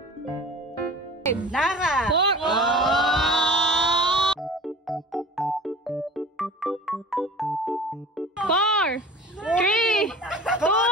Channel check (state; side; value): normal; both; correlation 0.40